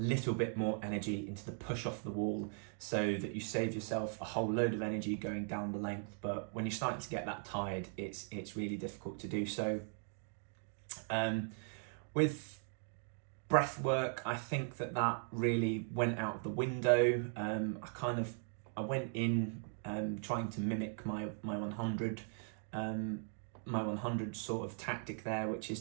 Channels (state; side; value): silent; left; 52 dB below the other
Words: bit more energy into the push off the wall, so that you save yourself a whole load of energy going down the length. But when you're starting to get that tired, it's really difficult to do so. With breath work, I think that really went out of the window. I went in trying to mimic my 100 sort of tactic there, which